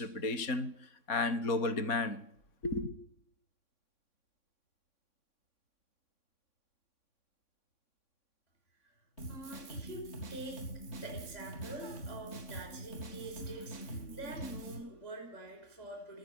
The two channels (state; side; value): late; right; 3.6 ms